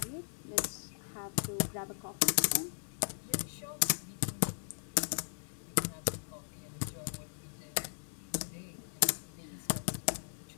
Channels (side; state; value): right; silent; digital silence